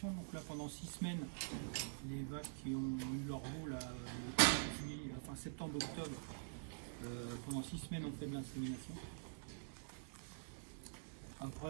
Donc là, pendant 6 semaines, les vaches qui ont eu leur veau, le septembre-octobre, pendant 6 semaines, on fait de l'insémination.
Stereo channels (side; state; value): left; silent; digital silence